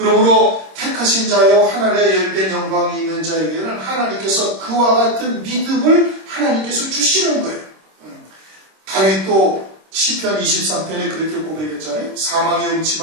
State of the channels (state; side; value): late; left; 26 ms